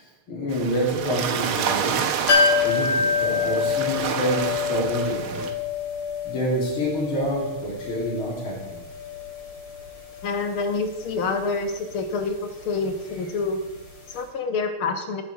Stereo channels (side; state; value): right; late; 6.5 ms